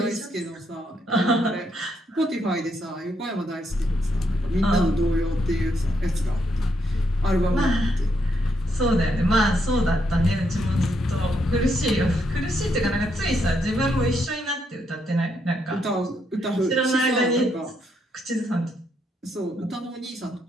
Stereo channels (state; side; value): normal; both; correlation 0.77